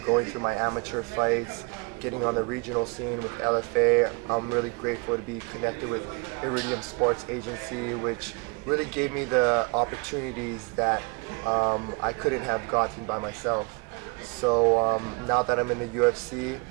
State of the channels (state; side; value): quieter; left; 30.9 dB